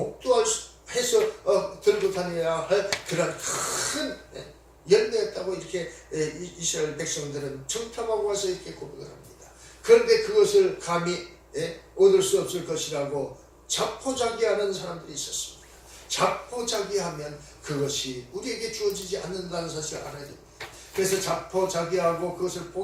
들고 다녀야 할 그런 큰 열매였다고 이렇게 이스라엘 백성들은 청탐하고 와서 이렇게 고백을 합니다. 그런데 그것을 감히 얻을 수 없을 것이라고 자포자기하는 사람들이 있었습니다. 자포자기하면 그것이 우리에게 주어지지 않는다는 사실을 알아야 됩니다. 그래서 자포자기하고 그것을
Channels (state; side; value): identical; both; correlation 1.00